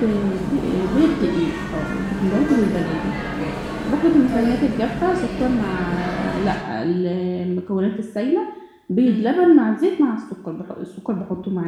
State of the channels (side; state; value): both; identical; correlation 1.00